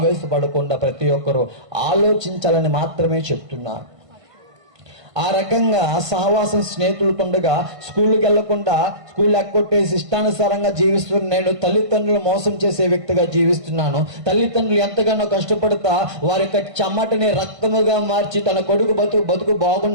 ప్రతి ఒక్కరూ ఆలోచించాలని మాత్రమే చెప్తున్నాను. ఆ రకంగా సహవాసం స్నేహితులతుండగా స్కూల్కి వెళ్లకుండా స్కూల్ ఎక్కొట్టేసి ఇష్టానుసారంగా జీవిస్తున్న నేను తల్లిదండ్రులు మోసం చేసే వ్యక్తిగా జీవిస్తున్నాను. తల్లిదండ్రులు ఎంతగానో కష్టపడతా వారి యొక్క చెమటని రక్తముగా మార్చి తన కొడుకు బతుకు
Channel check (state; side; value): late; left; 1.5 ms